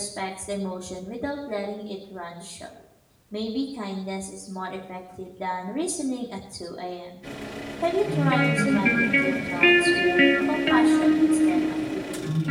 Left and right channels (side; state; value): both; identical; correlation 1.00